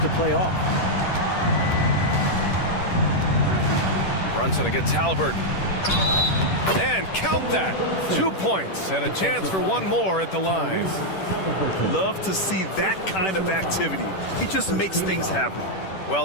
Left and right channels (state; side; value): late; right; 10 ms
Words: play off. Brunson against Haliburton. And count that. 2 points and a chance for one more at the line. Love to see that kind of activity. He just makes things happen.